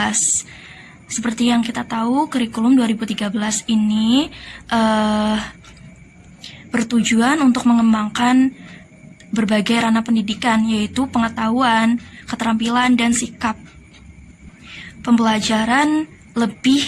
Seperti yang kita tahu, kurikulum 2013 ini bertujuan untuk mengembangkan berbagai ranah pendidikan, yaitu pengetahuan, keterampilan, dan sikap. Pembelajaran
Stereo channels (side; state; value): both; identical; correlation 1.00